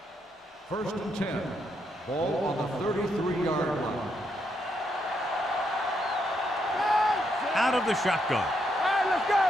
First and 10. Ball on the 33-yard line. Out of the shotgun. All right, let's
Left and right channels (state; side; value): normal; both; correlation 0.78